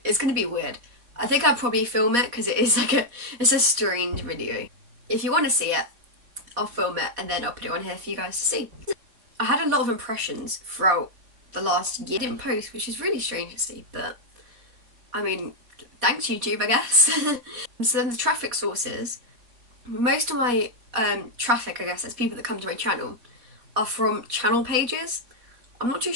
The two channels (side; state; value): left; late; 4.2 ms